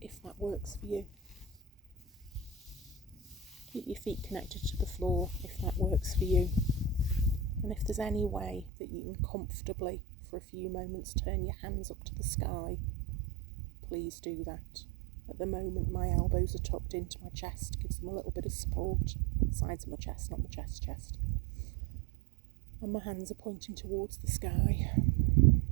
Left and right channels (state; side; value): drops out; left; at 8.7 s